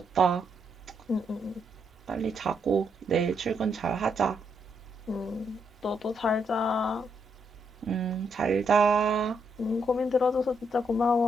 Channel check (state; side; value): normal; both; correlation 0.77